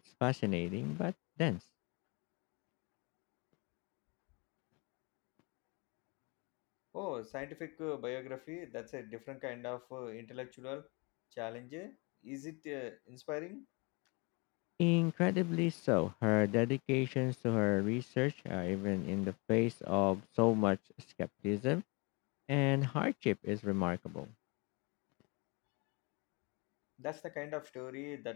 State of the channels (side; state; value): right; quieter; 29.8 dB